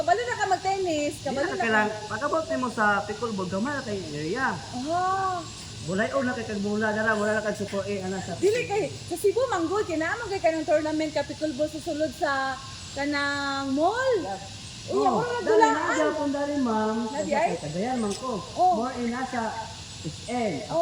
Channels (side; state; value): both; identical; correlation 1.00